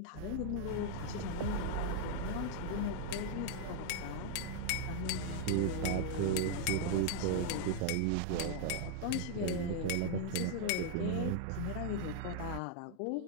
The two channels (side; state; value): both; different; correlation 0.00